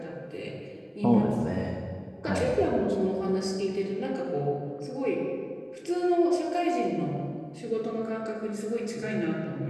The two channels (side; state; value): both; identical; correlation 1.00